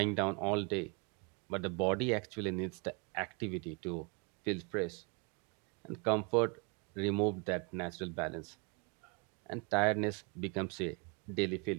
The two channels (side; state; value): left; quieter; 33.2 dB